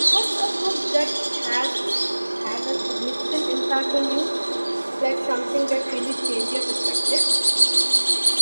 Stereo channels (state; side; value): inverted; both; correlation -1.00